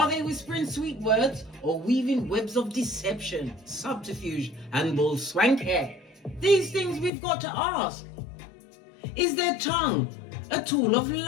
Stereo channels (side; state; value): right; drops out; at 7.1 s